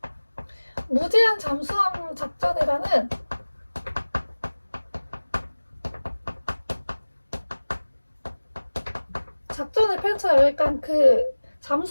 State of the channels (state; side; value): inverted; both; correlation -1.00